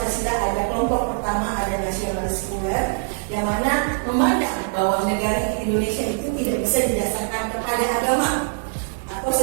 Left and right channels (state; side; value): silent; left; 63 dB below the other